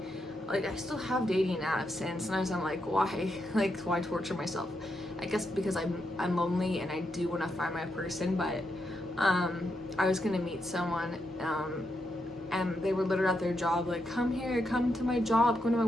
like I still have dating apps, and sometimes I'm like, why? Like, why torture myself? I guess because I'm lonely and I do want to find my person. But I was gonna meet someone, and they were literally at their job, like, come here, come to my job, come to my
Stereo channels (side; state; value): both; normal; correlation 0.82